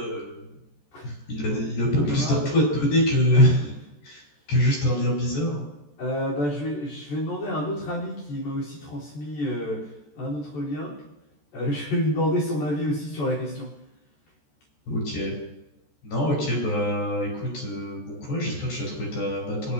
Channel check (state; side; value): late; right; 14 ms